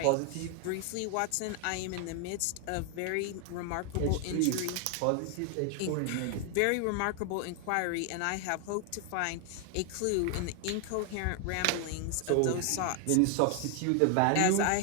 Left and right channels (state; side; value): different; both; correlation 0.01